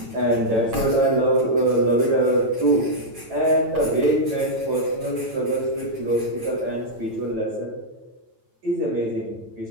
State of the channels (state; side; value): late; left; 9.0 ms